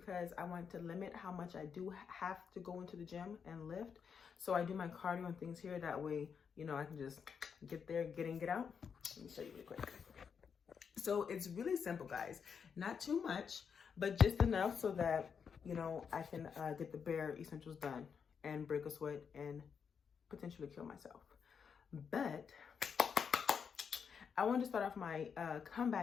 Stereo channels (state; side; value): quieter; right; 6.6 dB